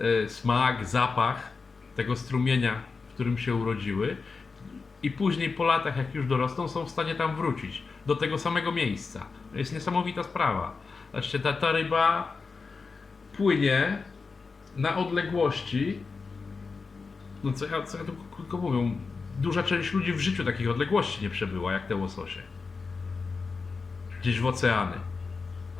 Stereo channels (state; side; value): quieter; right; 4.6 dB